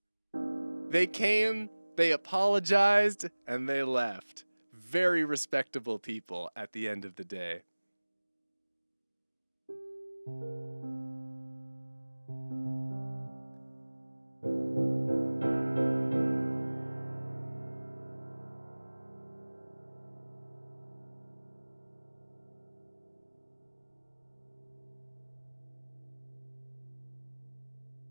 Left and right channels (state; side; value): inverted; both; correlation -1.00